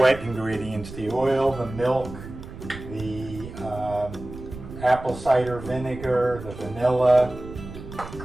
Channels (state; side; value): noise; right; rumble, 13 dB below the sound